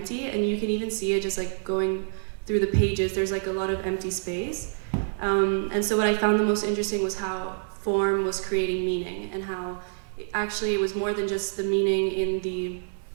and you can even see it just like going through the pages. There's like a lot of empty space. And so what I found the most interesting was how form was creating meaning, and how it was more than just the meaning in the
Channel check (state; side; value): silent; left; 60 dB below the other